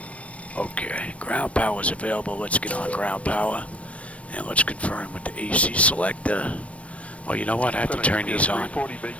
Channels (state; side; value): late; right; 0.064 ms